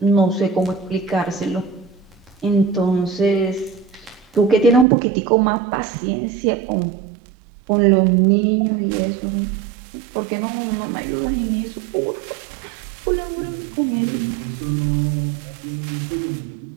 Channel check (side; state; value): left; drops out; at 4.9 s